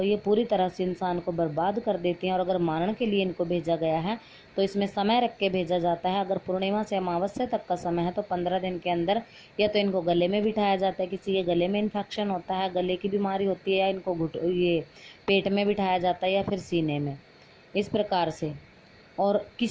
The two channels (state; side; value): identical; both; correlation 1.00